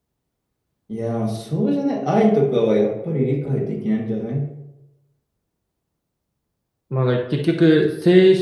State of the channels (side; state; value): both; identical; correlation 1.00